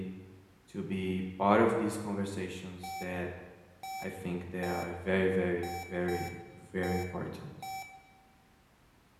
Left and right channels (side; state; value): both; identical; correlation 1.00